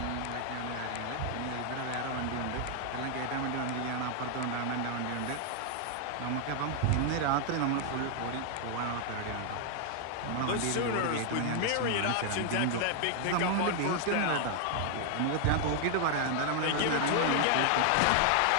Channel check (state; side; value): different; both; correlation 0.00